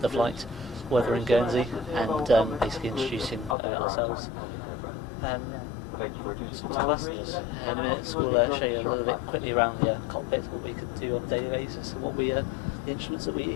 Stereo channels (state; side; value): drops out; right; at 3.6 s